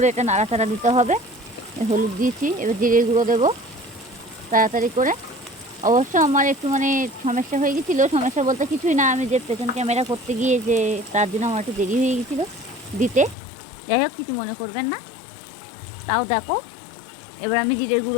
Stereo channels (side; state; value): right; drops out; at 13.4 s